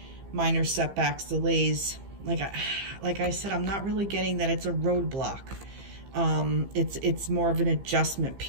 minor setbacks, delays. Like I said, I'm not really getting that it's a roadblock. It's more of an adjustment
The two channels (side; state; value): left; late; 15 ms